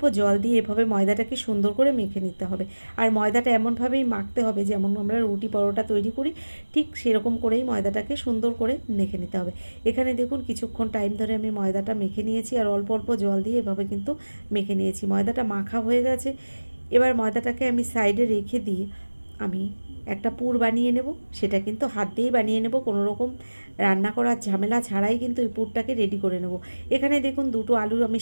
জল দিয়ে এভাবে ময়দাটাকে সুন্দর করে মেখে নিতে হবে। আর ময়দাটা এমনভাবেই মাখতে হবে যেমন আমরা রুটি পরোটা তৈরি করি, ঠিক সেরকম করেই ময়দাটাকে সুন্দর করে মেখে নিতে হবে। এখানে দেখুন কিছুক্ষণ টাইম ধরে আমি ময়দাটা মেখে নিয়েছি আর অল্প অল্প জল দিয়ে এভাবে কিন্তু মেখে নিয়েছি। ময়দাটা মাখা হয়ে গেছে। এবার ময়দাটাকে আমি সাইডে রেখে দিয়ে আমি একটা পুর বানিয়ে নেব। সেটা কিন্তু হাত দিয়েই বানিয়ে নেব, কোনো রকম রান্না করার ঝামেলা ছাড়াই কিন্তু এই পুরটাকে রেডি করে নেব। এখানে দেখুন 2টো আলু আমি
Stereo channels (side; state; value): both; inverted; correlation -1.00